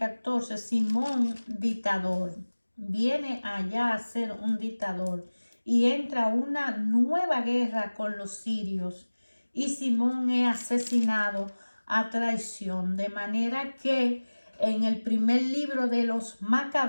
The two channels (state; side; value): inverted; both; correlation -1.00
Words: Simón dictador. Viene allá a ser un dictador y entra una nueva guerra con los sirios. Y Simón es asesinado a traición. De manera que en el primer libro de los